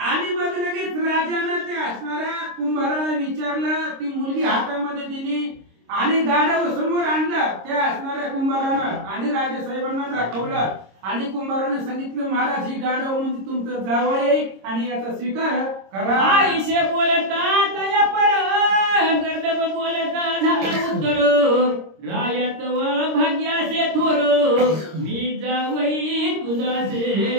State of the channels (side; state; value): left; late; 26 ms